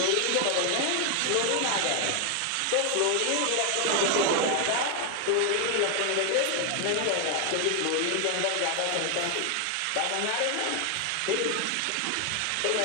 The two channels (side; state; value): both; different; correlation 0.00